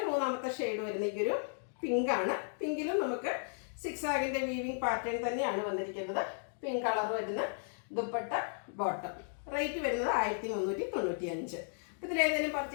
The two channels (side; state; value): right; silent; digital silence